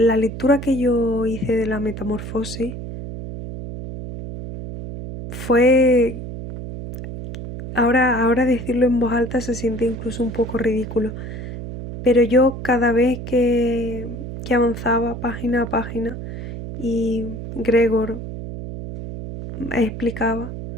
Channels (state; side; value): noise; right; hum, 9 dB below the sound